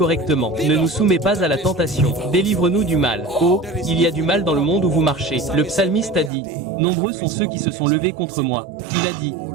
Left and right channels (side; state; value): left; drops out; at 6.3 s